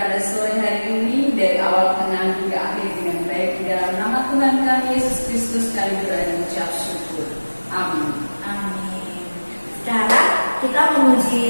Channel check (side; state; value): both; inverted; correlation -1.00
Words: sore hari ini dari awal, tengah, hingga akhir dengan baik di dalam nama Tuhan kami Yesus Kristus kami berdoa dan mengucap syukur. Amin. Amin. Sekarang kita